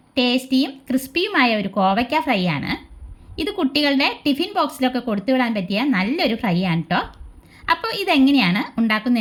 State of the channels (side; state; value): both; identical; correlation 1.00